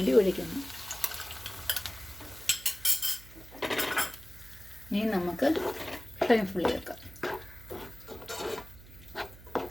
ഒഴിക്കുന്നു. ഇനി നമുക്ക് ഫ്ലെയിം ഫുള്ളി വെക്കാം.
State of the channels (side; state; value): right; noise; hum, 18 dB below the sound